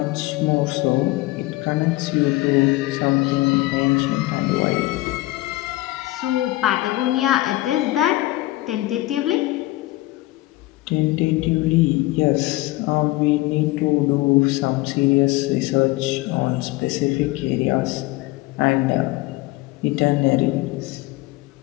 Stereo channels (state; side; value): quieter; right; 19.0 dB